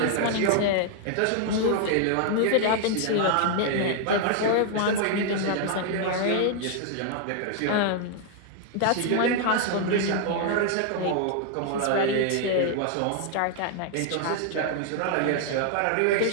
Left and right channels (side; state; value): both; different; correlation 0.00